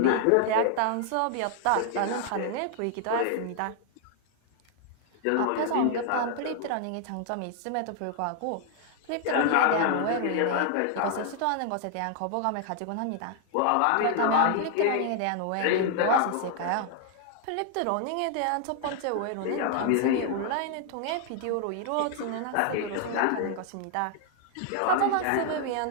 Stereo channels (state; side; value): different; both; correlation 0.00